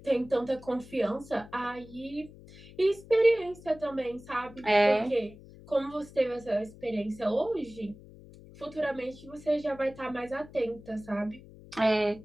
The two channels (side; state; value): left; noise; hum, 19 dB below the sound